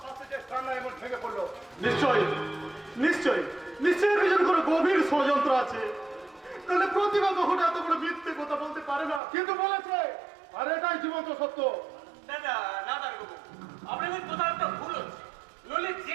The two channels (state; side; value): drops out; left; at 9.2 s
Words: শাস্তিতে কান্না এমন ভেঙে পড়লো? নিশ্চয়ই নিশ্চয়ই নিশ্চয়ই এর পিছনে কোনো গভীর ষড়যন্ত্র আছে। তাহলে প্রতিভা কখনো এত বড় মিথ্যে কথা বলতে পারে না। কিন্তু বলেছে, আর এটাই জীবন্ত সত্য। দাদা না দাঁড়াবো, আপনাদের কোথাও একটা ভুল হচ্ছে। নইলে